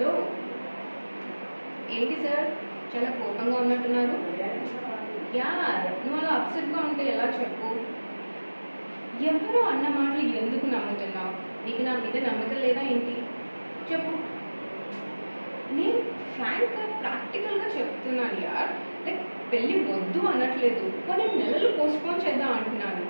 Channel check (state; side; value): inverted; both; correlation -1.00